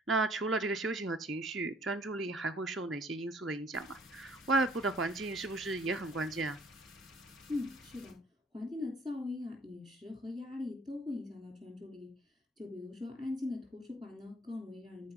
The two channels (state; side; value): normal; both; correlation 0.58